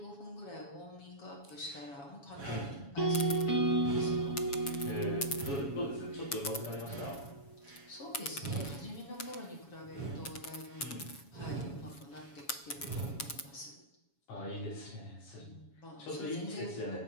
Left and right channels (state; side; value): late; right; 7.2 ms